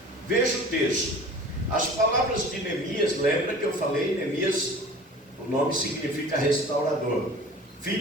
veja o texto. As palavras de Neemias, lembra que eu falei, Neemias o nome significa restaurador,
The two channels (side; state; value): both; normal; correlation 0.41